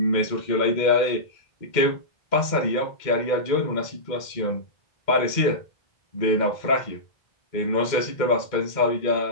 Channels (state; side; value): late; right; 2.1 ms